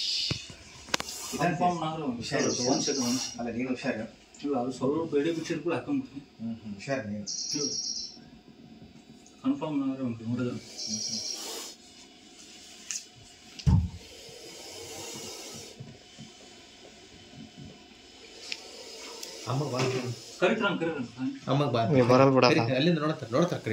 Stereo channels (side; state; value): both; identical; correlation 1.00